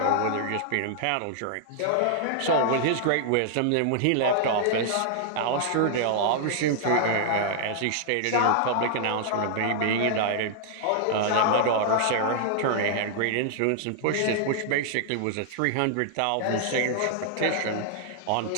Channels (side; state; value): both; different; correlation -0.01